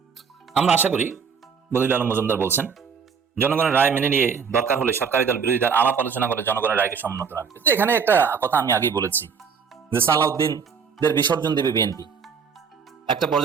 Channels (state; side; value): quieter; left; 6.2 dB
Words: আমরা আশা করি, বদিউল আলম মজুমদার বলছেন, জনগণের রায় মেনে নিয়ে দরকার হলে সরকারি দল বিরোধী দল আলাপ আলোচনা করে জনগণের রায়কে সম্মত রাখবে। তো এখানে একটা কথা আমি আগেই বলেছি যে সালাউদ্দিনদের বিসর্জন দেবে বিএনপি। একটা